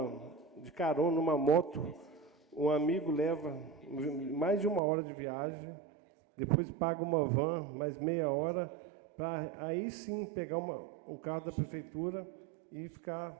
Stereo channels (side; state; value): left; drops out; at 4.8 s